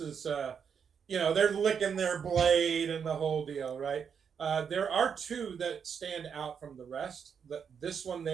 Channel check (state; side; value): quieter; left; 7.0 dB